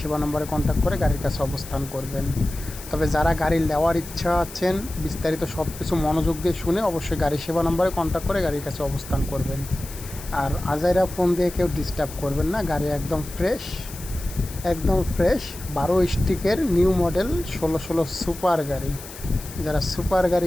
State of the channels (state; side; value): noise; left; hiss, 14 dB below the sound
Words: সেবা নম্বরে কন্ট্যাক্ট করে গাড়ির কাছে অবস্থান করবেন। তবে যারা গাড়ি নেওয়ার ইচ্ছা আছেন, বিস্তারিত সব কিছু মনোযোগ দিয়ে শুনে অবশ্যই গাড়ি সেবা নম্বরে কন্ট্যাক্ট করে গাড়ির কাছে অবস্থান করবেন। আর আজাইরা ফোন দিয়ে কেউ ডিস্টার্ব করবেন না, গাড়ি একদম ফ্রেশ, একদম ফ্রেশ 12 স্টিকের নিউ মডেল 16 সুপার গাড়ি। যারা সুপার